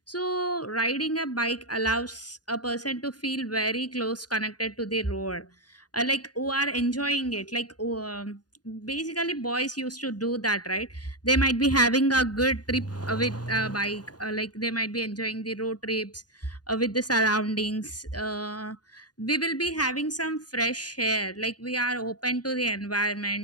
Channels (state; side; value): late; right; 0.69 ms